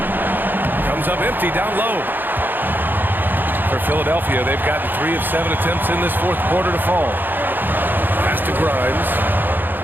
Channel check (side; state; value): left; late; 0.092 ms